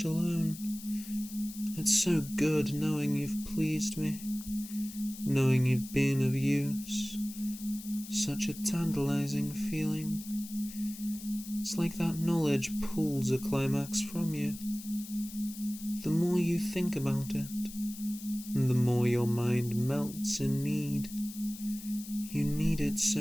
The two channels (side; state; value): left; noise; hiss, 14 dB below the sound